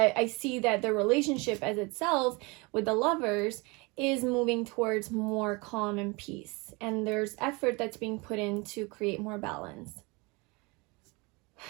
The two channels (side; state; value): left; quieter; 27.2 dB